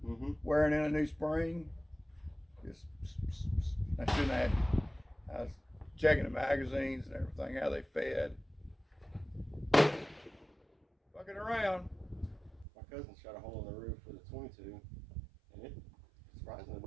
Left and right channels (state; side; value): drops out; left; at 12.7 s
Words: wearing in a new spring. Just, I shouldn't have. I was checking the magazines and everything, how they fed. Fucking around. My cousin shot a hole in the roof with a 22, and it surprisingly